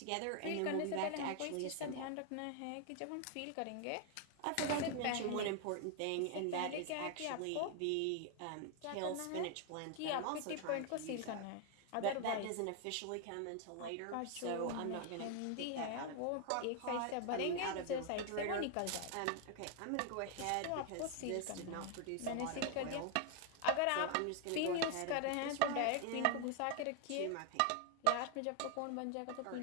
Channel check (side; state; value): both; different; correlation 0.00